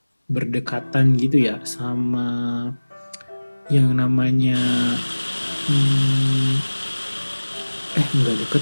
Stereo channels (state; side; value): inverted; both; correlation -1.00